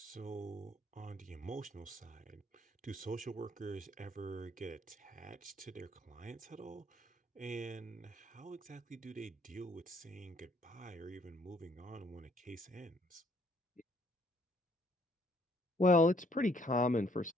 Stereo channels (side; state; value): both; normal; correlation 0.65